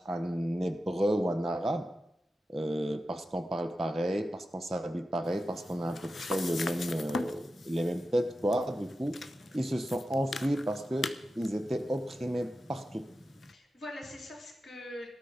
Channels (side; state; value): both; normal; correlation 0.92